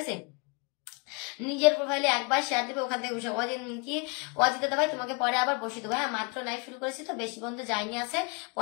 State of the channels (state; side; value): quieter; right; 32.3 dB